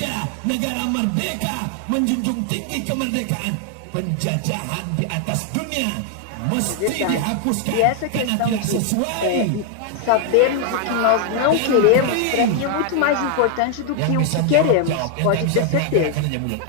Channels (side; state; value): both; different; correlation 0.00